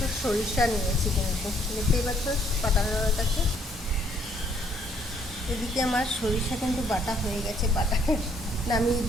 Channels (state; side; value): normal; both; correlation 0.66